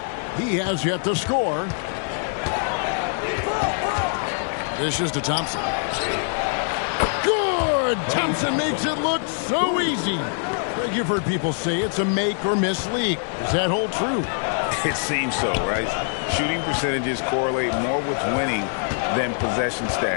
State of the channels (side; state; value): right; silent; 59 dB below the other